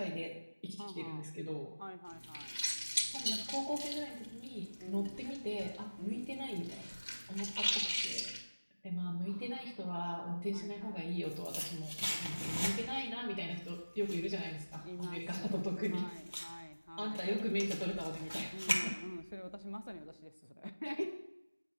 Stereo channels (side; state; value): both; inverted; correlation -1.00